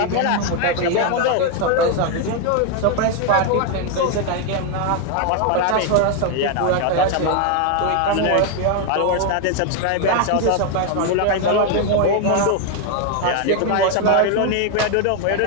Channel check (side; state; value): both; different; correlation 0.01